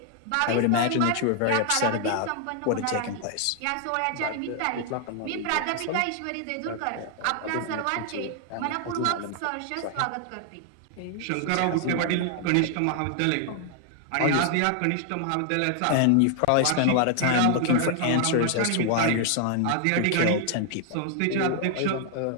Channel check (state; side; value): different; both; correlation 0.00